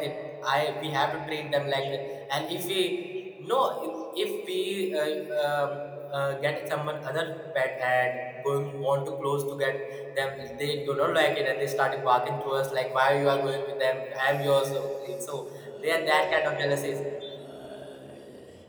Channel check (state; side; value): identical; both; correlation 1.00